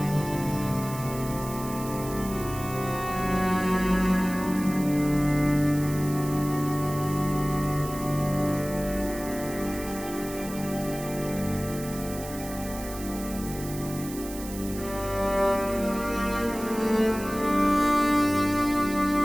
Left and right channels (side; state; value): right; noise; hiss, 13 dB below the sound